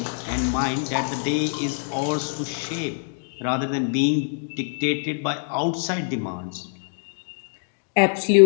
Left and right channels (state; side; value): silent; right; digital silence